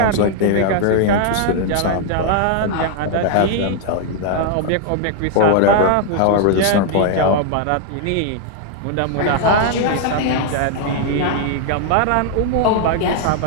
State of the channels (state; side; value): different; both; correlation 0.00